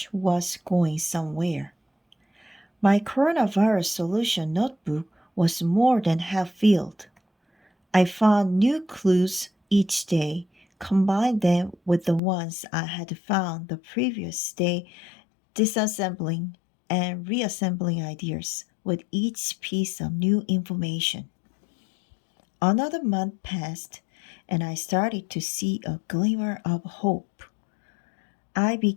was going somewhere. My coronavirus solution notebook was more than half filled. I found new clues each day, combined them with the ones I had found the previous day, disassembling and reassembling ideas with each piece of new information. Another month passed, and I started to see a glimmer of hope. I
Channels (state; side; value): drops out; right; at 12.2 s